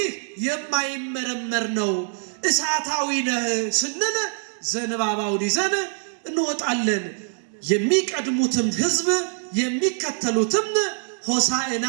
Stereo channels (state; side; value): silent; left; 57 dB below the other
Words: የማይመረመር ነው፣ እሳታዊ ነህ ስንል ዘንባባውን ይዘን እንወጣለን። የሚቀድሙትም ህዝብ የሚከተሉትም ሆሳዕና